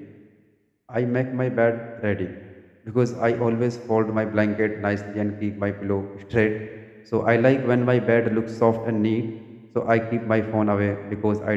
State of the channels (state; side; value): identical; both; correlation 1.00